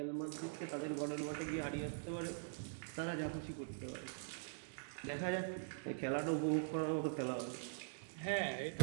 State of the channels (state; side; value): silent; left; digital silence